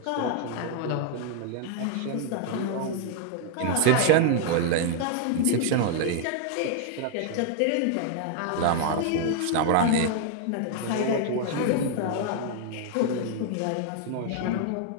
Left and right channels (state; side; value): different; both; correlation 0.00